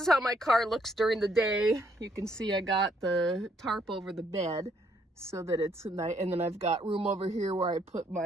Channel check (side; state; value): both; normal; correlation 0.70